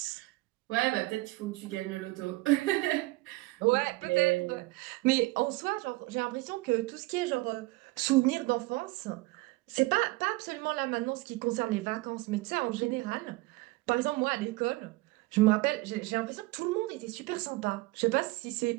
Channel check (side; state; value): left; quieter; 21.6 dB